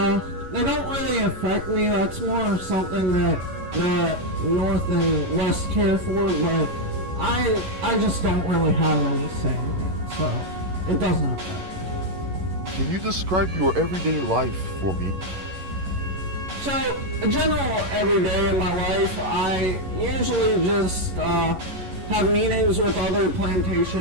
don't really affect me. That's more of something that the North and West care for, but I just don't really have any say in it, so it doesn't affect me. Can you describe your everyday life for me? So, a general everyday in my life, I usually just have meetings with other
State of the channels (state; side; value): late; left; 11 ms